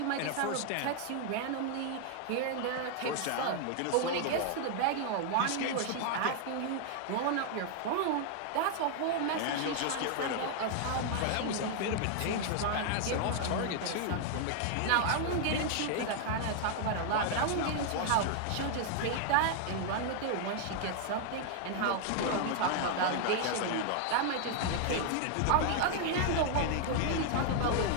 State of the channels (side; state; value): both; different; correlation 0.00